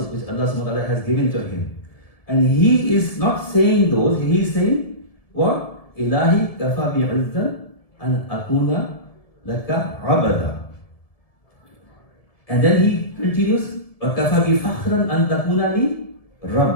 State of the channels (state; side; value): late; right; 1.7 ms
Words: wa ta'ala has given to him. And he is not saying those, he is saying what? Ilahi kafa bi'izzan an akuna laka abada. And then he continues, وَكَفَى بِفَخْرًا أَن تَكُونَ لِي